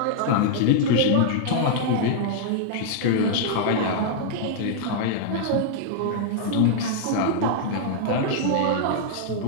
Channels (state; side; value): different; both; correlation -0.01